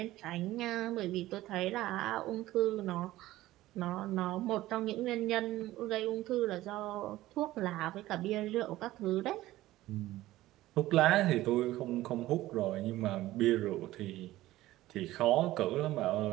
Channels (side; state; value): left; quieter; 16.1 dB